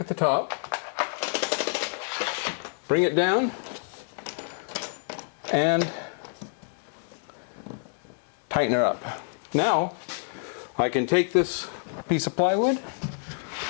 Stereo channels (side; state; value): right; silent; digital silence